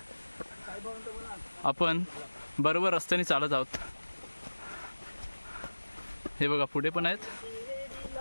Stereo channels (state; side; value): inverted; both; correlation -1.00